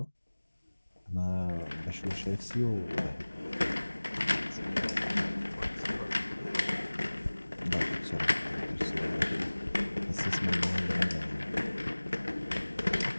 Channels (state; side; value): inverted; both; correlation -1.00